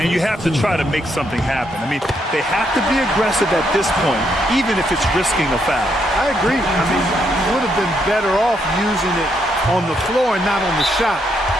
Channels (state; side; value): normal; both; correlation 0.76